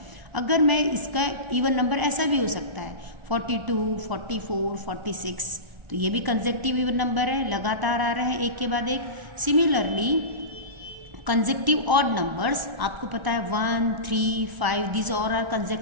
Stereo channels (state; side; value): late; left; 1.0 ms